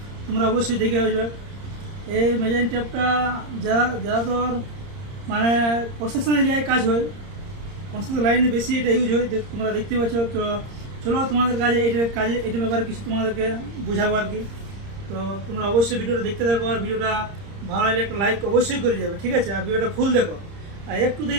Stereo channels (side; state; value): left; late; 30 ms